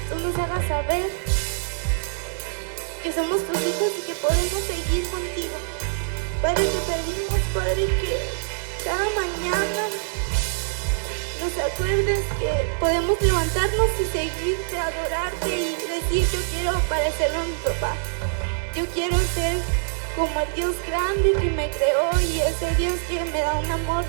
tú nos hagas saber que somos tus hijos y que podemos seguir contigo. Padre, te pedimos, Padre, que cada mañana nos acuerdes que podemos levantarnos y seguirte, adorarte y decir: yo quiero parecerme a mi papá. Yo quiero ser como el Dios grande que me creó y ese Dios que me da un amor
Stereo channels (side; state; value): left; silent; digital silence